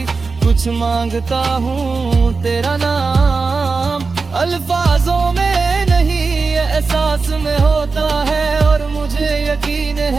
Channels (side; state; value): left; quieter; 4.3 dB